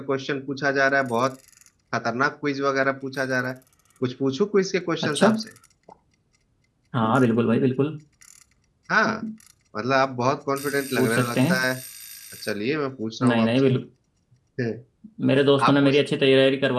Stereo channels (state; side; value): identical; both; correlation 1.00